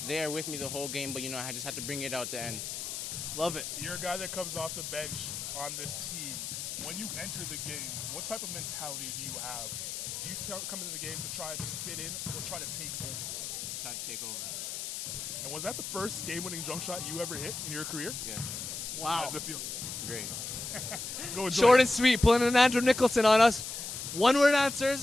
there with me the whole game, but I just had to bring it out the end. Love it. You're a guy that comes off the bench on this team. When you enter the game, what type of mentality do you have? Do you come into the game to try to just fit in or try to take over? Try to take over. And was that the first game-winning jump shot you ever hit in your career? Yes. Wow. How does it feel? Great. Short and sweet, pulling an Andrew Nicholson on us. One-word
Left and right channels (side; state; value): left; noise; hiss, 5 dB below the sound